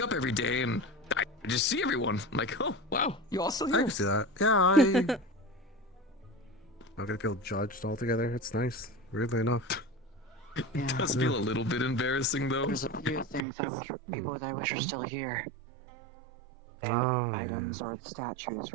up every day and I just see everyone. I'm like, oh, wow, you all still I here? can see that. Yeah, not gonna feel judged altogether. It's nice, weirdly enough. It does feel a little bit embarrassing, though. There's a few things I wish, people that I wish are still here. Oh, Items or statues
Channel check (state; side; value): drops out; left; at 13.4 s